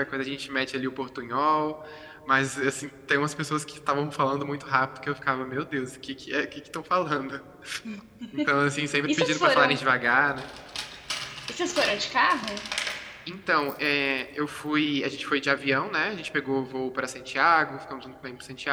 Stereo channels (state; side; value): identical; both; correlation 1.00